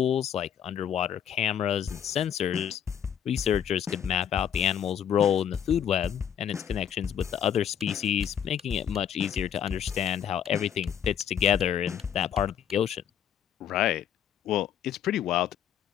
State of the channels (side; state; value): right; quieter; 9.1 dB